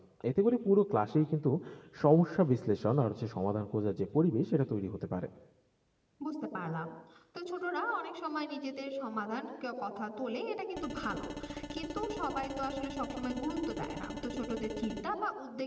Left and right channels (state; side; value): identical; both; correlation 1.00